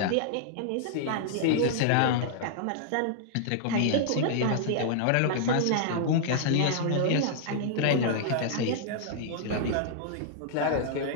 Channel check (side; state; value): both; different; correlation -0.01